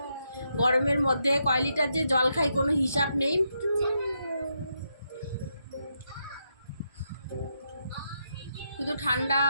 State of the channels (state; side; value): inverted; both; correlation -0.81